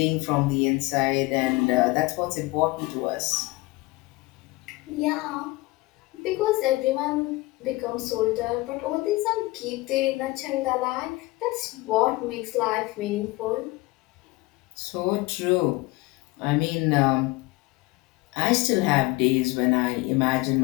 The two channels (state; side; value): quieter; right; 21.6 dB